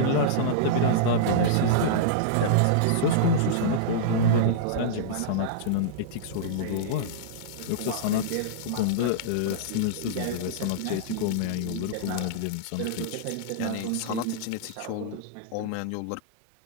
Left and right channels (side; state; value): both; different; correlation -0.02